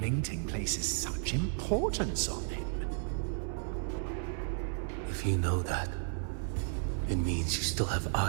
Mingting places such importance on him. If you know that, it means you still have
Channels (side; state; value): left; silent; 55 dB below the other